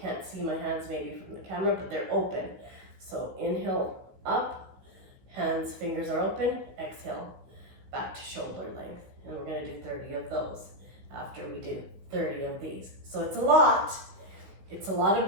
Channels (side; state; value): left; late; 16 ms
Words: see my hands maybe from the camera, but they're open. So inhale up, hands, fingers are open, exhale, back to shoulder length. And we're gonna do 30 of those after we do 30 of these. So it's a lot of